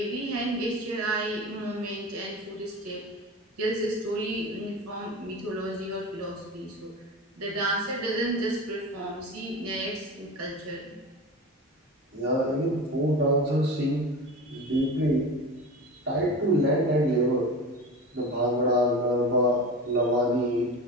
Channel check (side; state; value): both; normal; correlation 0.30